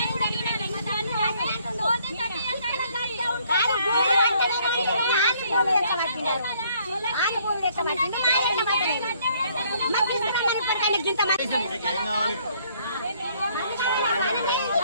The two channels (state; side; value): inverted; both; correlation -0.64